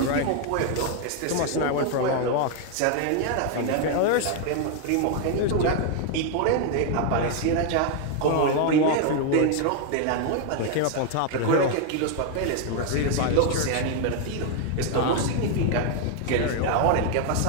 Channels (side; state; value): both; different; correlation 0.00